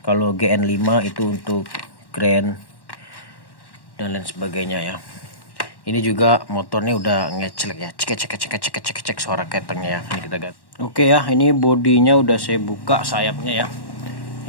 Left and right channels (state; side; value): late; right; 1.1 ms